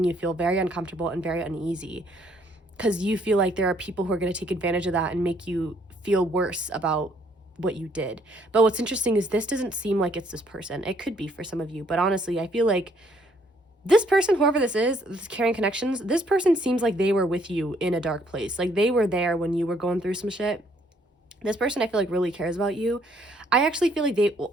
you feel very uncomfortable and very uneasy, because you feel like there are people who are going to take advantage of that and make you feel worse about what you did. But what's interesting is this doesn't seem like it's this person. It could be for some of you, but honestly, I feel like this person, whoever this is, this carrying connections, this person seems like they were with you in a dark place. Like they were there when you were going through some shit. This person I feel like really cares about you. I actually feel like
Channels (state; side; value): normal; both; correlation 0.66